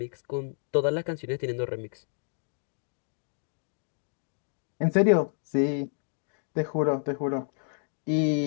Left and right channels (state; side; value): silent; right; digital silence